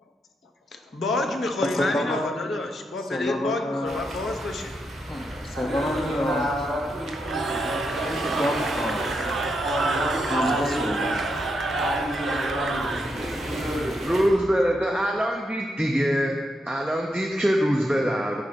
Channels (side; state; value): both; normal; correlation 0.82